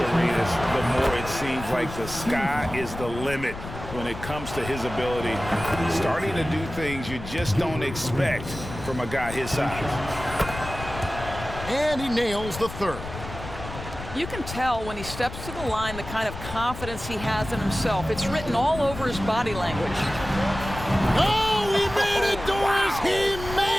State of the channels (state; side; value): noise; left; rumble, 10 dB below the sound